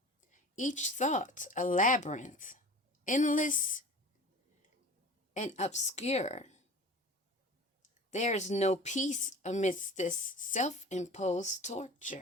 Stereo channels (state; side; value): normal; both; correlation 0.39